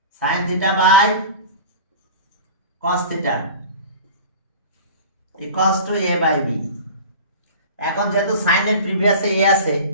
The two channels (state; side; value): inverted; both; correlation -0.36